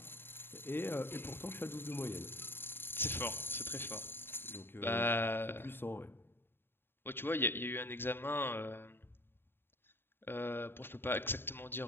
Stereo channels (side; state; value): right; late; 0.10 ms